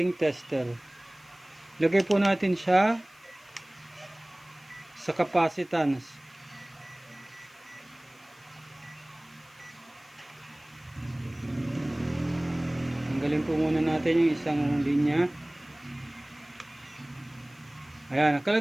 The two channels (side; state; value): left; noise; hiss, 29 dB below the sound